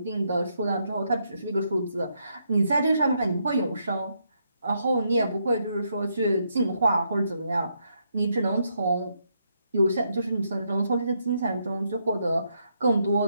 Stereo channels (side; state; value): both; inverted; correlation -0.77